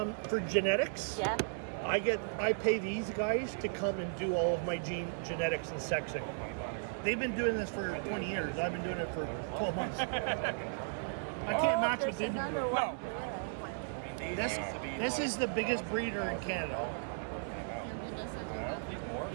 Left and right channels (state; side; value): silent; left; digital silence